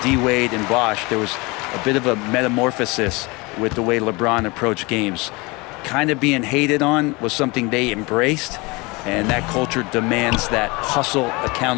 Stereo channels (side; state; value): right; quieter; 25.4 dB